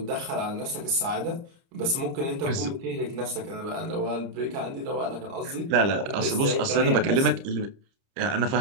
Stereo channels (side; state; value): left; late; 30 ms